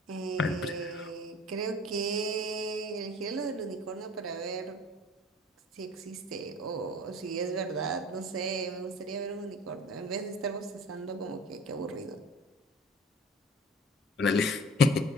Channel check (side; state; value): both; normal; correlation 0.45